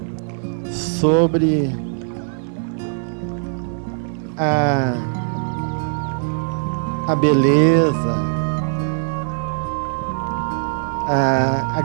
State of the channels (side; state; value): left; silent; digital silence